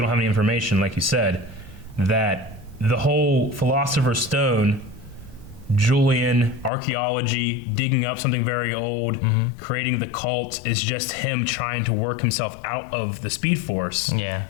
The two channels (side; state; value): right; drops out; at 6.7 s